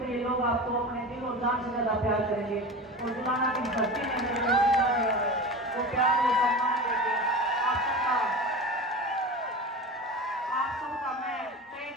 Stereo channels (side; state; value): both; normal; correlation 0.30